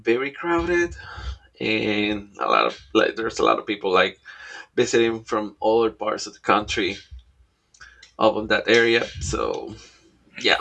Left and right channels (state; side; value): identical; both; correlation 1.00